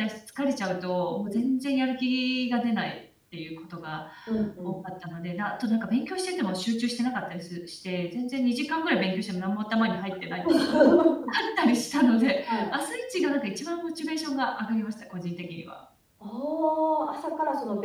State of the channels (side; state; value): both; identical; correlation 1.00